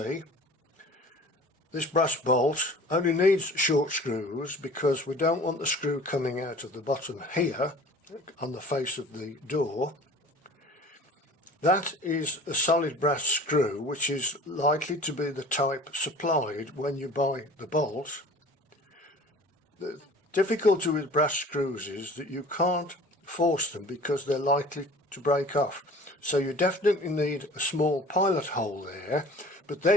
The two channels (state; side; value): normal; both; correlation 0.45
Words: this brass bolt only needs short screws because we don't want the screw coming out of the bottom here on the face of the door. That is a solid brass screw, which is likely to be the type supplied when you buy the bolt. The difficulty with brass screws is that you can't force them because they're likely to break off. So you definitely need a small pilot hole there, but